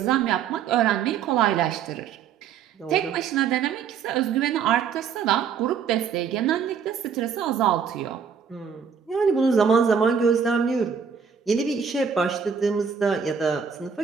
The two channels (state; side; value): quieter; left; 6.8 dB